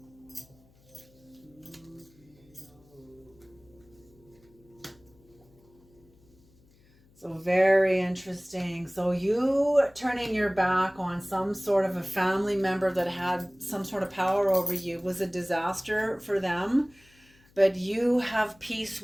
So very interesting. So you turning your back on some sort of a family member that had some sort of power over you was a disaster for them, but you have peace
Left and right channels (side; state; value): left; noise; hum, 30 dB below the sound